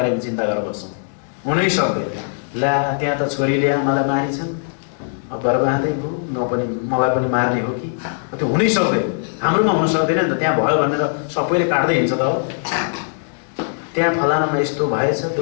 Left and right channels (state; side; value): silent; right; 66 dB below the other